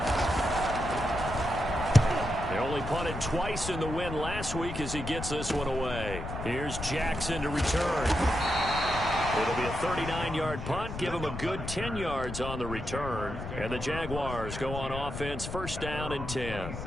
They only punted twice in the win last week as he gets this one away. Here's Jackson to return. It'll be a 39-yard punt, give him a good 10 yards on the return. And the Jaguars go on offense, 1st down and 10.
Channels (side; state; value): left; noise; rumble, 7 dB below the sound